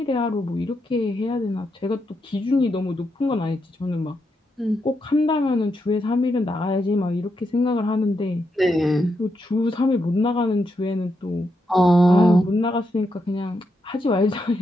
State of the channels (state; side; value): normal; both; correlation 0.82